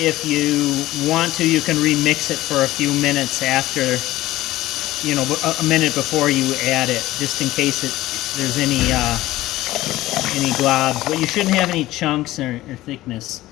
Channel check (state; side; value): quieter; right; 16.4 dB